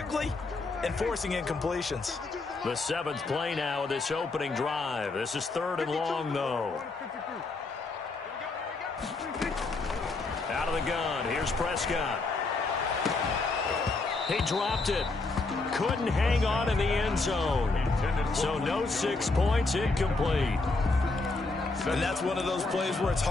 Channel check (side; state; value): right; quieter; 3.5 dB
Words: and forcing incompletions. The 7th play now of this opening drive. This is 3rd and long, though. Out of the gun. Here's Prescott. He dropped it. Couldn't hang on in the end zone. So no 6 points, incomplete. And that's one of those plays where it's